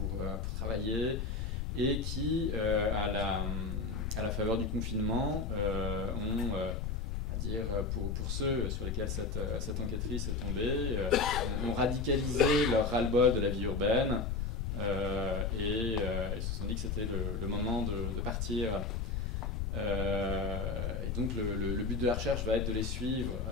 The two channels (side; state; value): left; noise; rumble, 1 dB below the sound